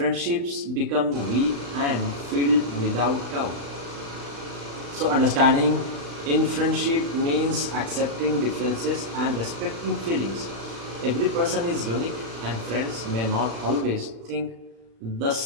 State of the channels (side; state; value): left; late; 35 ms